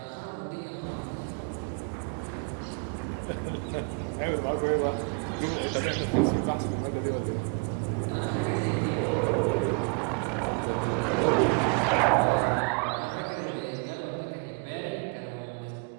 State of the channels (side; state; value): left; quieter; 36.5 dB